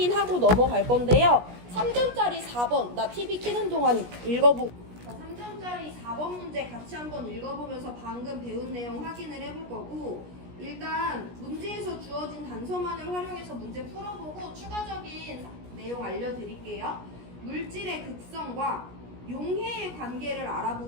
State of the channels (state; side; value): late; left; 17 ms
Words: 넘어갈 건데요. 3점짜리 4번 나 TV 켜는 동안 읽어보고 3점짜리 4번 문제 같이 한번 읽어보면서 방금 배운 내용 확인을 해볼 거고, 일단 문제에서 주어진 단서만을 활용해서 문제 풀어보고 추가적인 내용 알려드릴게요. 물질의 극성과 용해의 관계를